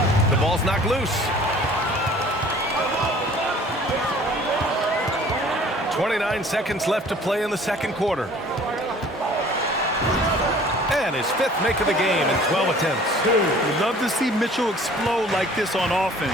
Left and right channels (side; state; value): both; normal; correlation 0.51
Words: The ball's knocked loose. 29 seconds left to play in the second quarter. And his 5th make of the game in 12 attempts. We'd love to see Mitchell explode like this on offense.